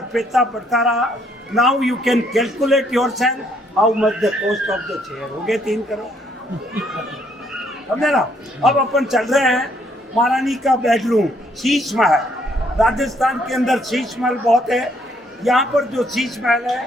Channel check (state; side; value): normal; both; correlation 0.68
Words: पैसा बढ़ता रहा। Now you can calculate your self how much the cost of the chair. हो गए 3 करोड़, समझे ना? अब अपन चल रहे हैं महारानी का बेडरूम, शीश महल। राजस्थान के अंदर शीश महल बहुत है। यहाँ पर जो शीश महल